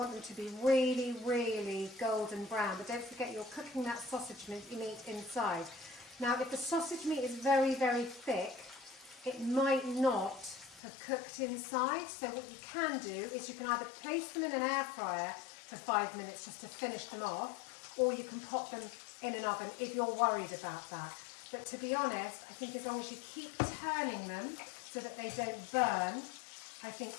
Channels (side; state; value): right; drops out; at 10.8 s